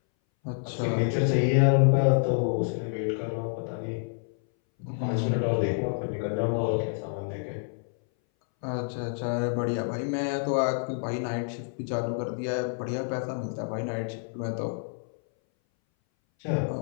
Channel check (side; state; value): right; silent; 59 dB below the other